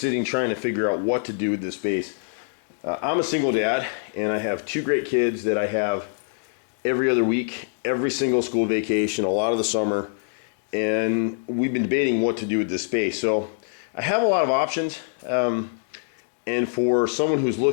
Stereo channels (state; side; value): silent; right; digital silence